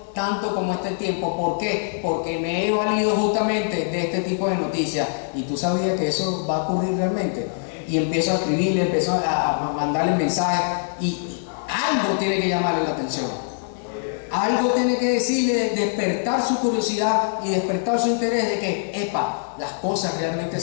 tanto como este tiempo. ¿Por qué? Porque me he valido justamente de este tipo de noticias. Y tú sabías que eso va a ocurrir realmente. Y empiezo a escribirle, empiezo a mandarle mensajes, y algo tiene que llamarle la atención. Algo tiene que decirle, despertar su curiosidad y despertar su interés de que, las cosas realmente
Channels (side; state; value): right; silent; digital silence